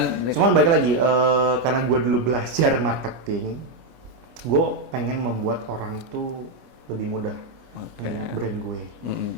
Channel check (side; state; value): left; late; 25 ms